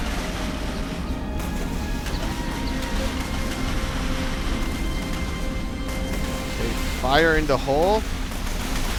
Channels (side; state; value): both; identical; correlation 1.00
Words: Okay, fire in the hole.